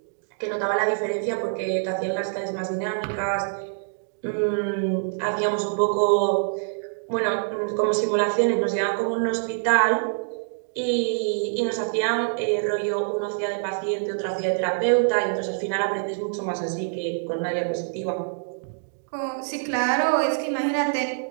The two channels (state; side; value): silent; left; digital silence